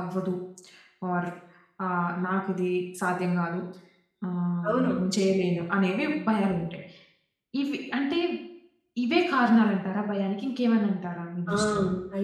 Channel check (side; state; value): both; identical; correlation 1.00